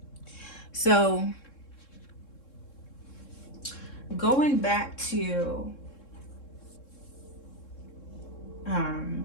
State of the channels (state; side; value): late; right; 3.7 ms